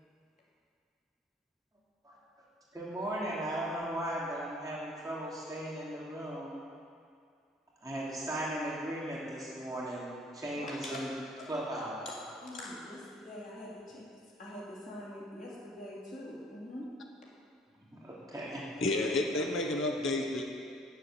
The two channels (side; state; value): both; normal; correlation 0.56